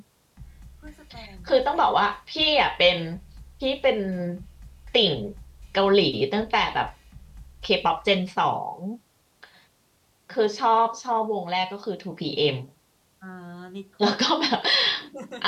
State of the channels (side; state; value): both; identical; correlation 1.00